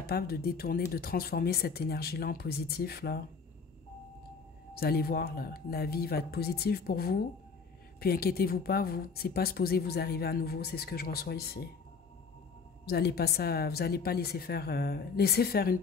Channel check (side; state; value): right; quieter; 5.2 dB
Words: de détourner, de transformer cette énergie-là en positif, là, vous allez voir, là, la vie va être positive pour vous. Puis inquiétez-vous pas, vous, c'est pas supposé vous arriver à nouveau, c'est ce que je reçois ici. Vous n'allez pas laisser faire une